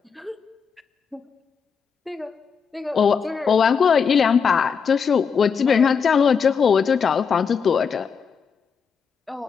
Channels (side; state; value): right; quieter; 6.3 dB